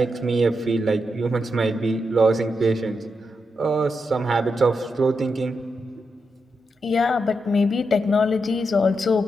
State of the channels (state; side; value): normal; both; correlation 0.85